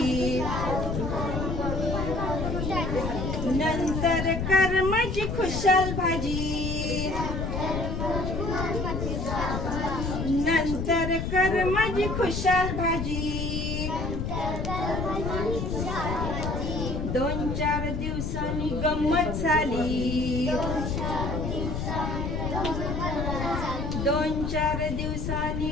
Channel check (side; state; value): left; noise; rumble, 2 dB below the sound